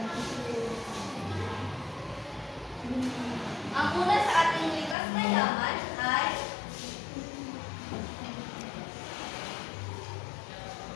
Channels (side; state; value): right; drops out; at 5.0 s